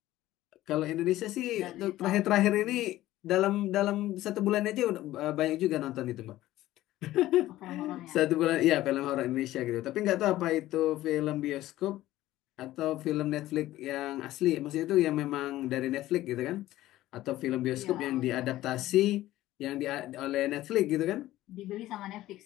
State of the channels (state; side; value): quieter; right; 15.3 dB